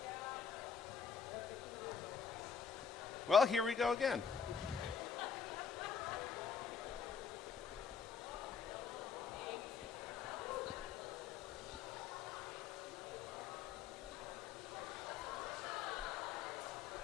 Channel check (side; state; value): right; quieter; 6.3 dB